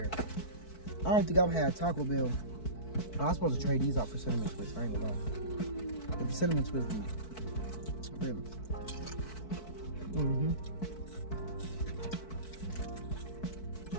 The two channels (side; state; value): right; late; 4.6 ms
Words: I don't think I've had Taco Bell. I was supposed to trade these out for cinnamon twists. I ain't gonna lie. If the cinnamon twist be really.